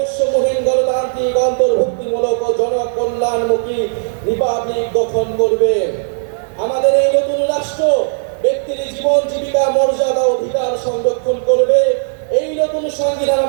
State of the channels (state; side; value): silent; left; 67 dB below the other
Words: গণতান্ত্রিক, অন্তর্ভুক্তিমূলক ও জনকল্যাণমুখী রিপাবলিক গঠন করবে। আমাদের এই নতুন রাষ্ট্র ব্যক্তির জীবন, জীবিকা, মর্যাদা, অধিকার সংরক্ষণ করবে। এই নতুন সংবিধান